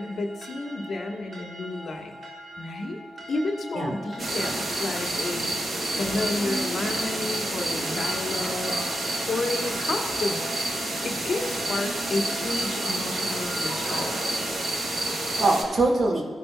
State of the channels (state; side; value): normal; both; correlation 0.86